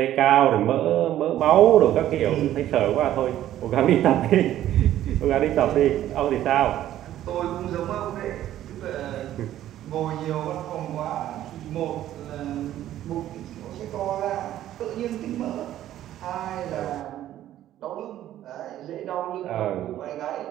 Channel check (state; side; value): quieter; left; 12.7 dB